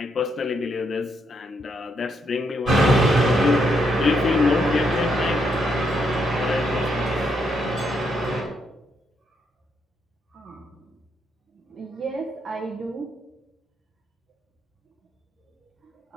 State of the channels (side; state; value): both; normal; correlation 0.77